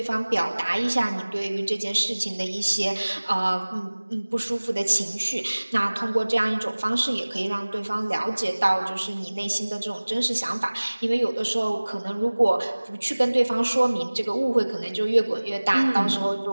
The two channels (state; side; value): inverted; both; correlation -1.00